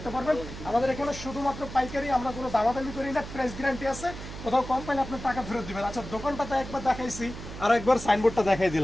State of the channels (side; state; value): right; noise; hum, 11 dB below the sound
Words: পারবেন। আমাদের এখানে শুধুমাত্র পাইকারি, আমরা কোনো দামাদামি করি না, প্রাইস গ্যারান্টি আছে। কোথাও কম পাইলে আপনার টাকা ফেরত দিবেন। আচ্ছা, দোকানটাতে একবার দেখাইছি, আর একবার সাইনবোর্ডটা দেখাই